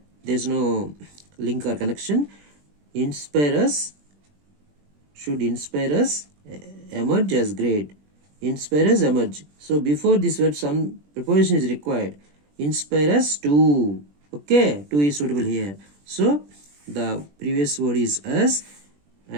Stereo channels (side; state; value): left; late; 20 ms